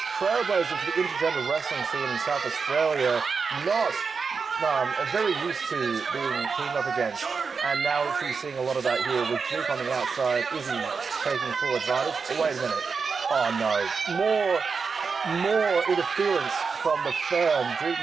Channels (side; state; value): left; quieter; 5.2 dB